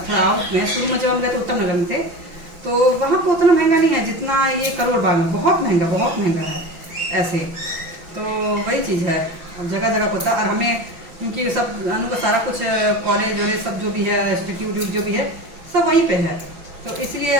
थोड़ा आउट में। शुरू में जब हम गए तो उत्तम नगर में थे, तो वहाँ पे उतना महंगा नहीं है जितना ये करोल बाग में, बहुत महंगा है ऐसे। तो वही चीज़ है, और जगह जगह होता है। और हमें क्योंकि सब अनु का सारा कुछ कॉलेज वॉलेज सब जो भी है, इंस्टीट्यूट जो भी है, सब वहीं पे है, तो इसलिए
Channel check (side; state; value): left; late; 5.8 ms